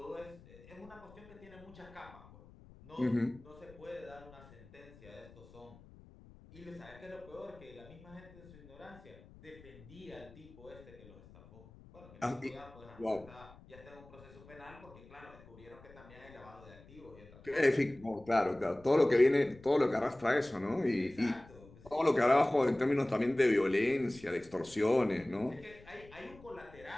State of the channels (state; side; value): noise; left; rumble, 21 dB below the sound